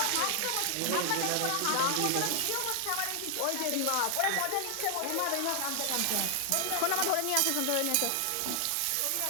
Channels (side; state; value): both; different; correlation 0.00